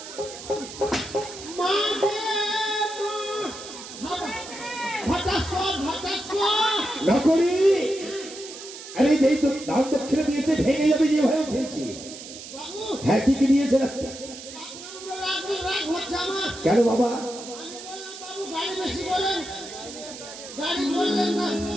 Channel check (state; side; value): noise; right; hiss, 13 dB below the sound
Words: নকরি আরে যেই তো দান দক্ষিণা দিয়েছে ভেঙে যাবে যে ভয় ফেলছি। হ্যাঁ কি কি দিয়েছে না কেন বাবা?